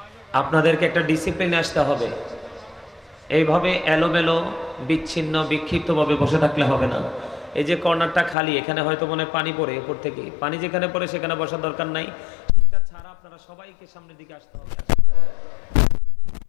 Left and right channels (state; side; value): drops out; right; at 8.3 s